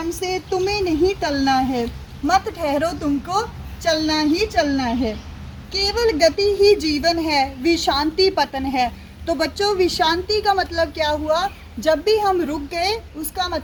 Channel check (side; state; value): both; identical; correlation 1.00